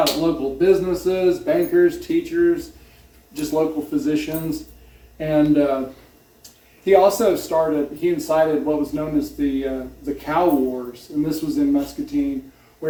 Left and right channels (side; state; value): both; identical; correlation 1.00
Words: at local businesses, bankers, teachers, just local physicians, and. He also incited what was known as the Cow Wars, and this was in Muscatine,